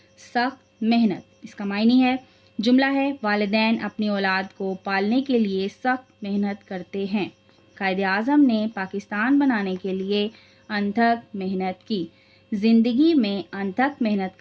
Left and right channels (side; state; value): both; identical; correlation 1.00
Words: सख्त मेहनत। इसका मायनी है जुमला है वालिदैन अपनी औलाद को पालने के लिए सख्त मेहनत करते हैं। कायदे आज़म ने पाकिस्तान बनाने के लिए अनथक मेहनत की। ज़िंदगी में अनथक मेहनत